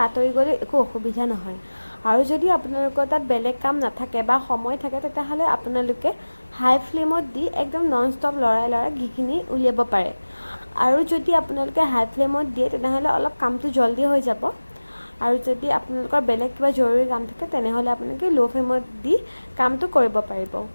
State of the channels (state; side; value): inverted; both; correlation -1.00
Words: আঁতৰি গ'লে একো অসুবিধা নহয়। আৰু যদি আপোনালোকৰ তাত বেলেগ কাম নাথাকে বা সময় থাকে, তেতিয়াহ'লে আপোনালোকে হাই ফ্লেমত দি একদম নন ষ্টপ লৰাই ঘিখিনি উলিয়াব পাৰে। আৰু যদি আপোনালোকে হাই ফ্লেমত দিয়ে তেনেহ'লে অলপ কামটো জল্দি হৈ যাব। আৰু যদি আপোনালোকৰ বেলেগ কিবা জৰুৰী কাম থাকে তেনেহ'লে আপোনালোকে ল' ফ্লেমত দি কামটো কৰিব পাৰিব।